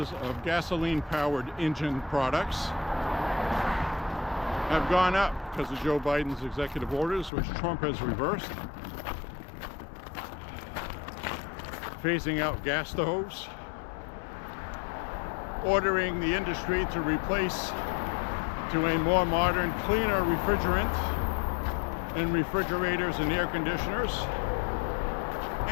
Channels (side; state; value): right; drops out; at 7.3 s